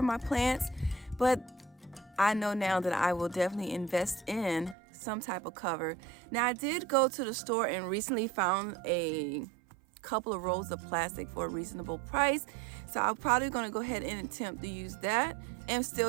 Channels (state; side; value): drops out; left; at 4.8 s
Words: my plants, but I know now that I will definitely invest in some type of cover. Now I did go to the store and recently found a couple of rolls of plastic for a reasonable price. So I'm probably going to go ahead and attempt to use that and